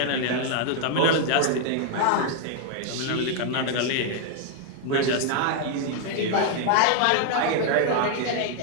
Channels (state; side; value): different; both; correlation 0.00